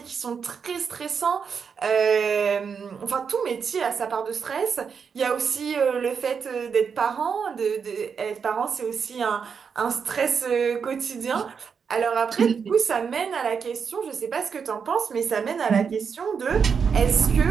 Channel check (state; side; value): quieter; left; 6.3 dB